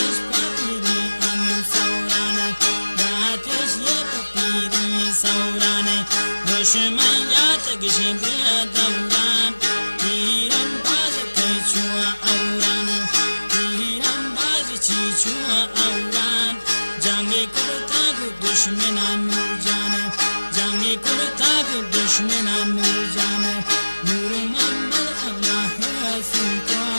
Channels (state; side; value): inverted; both; correlation -1.00